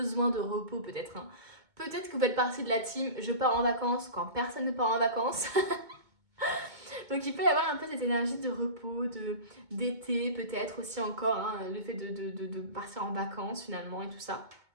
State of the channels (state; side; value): late; left; 2.2 ms